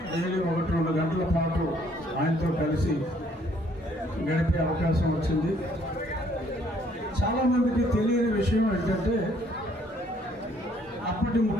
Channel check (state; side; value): normal; both; correlation 0.64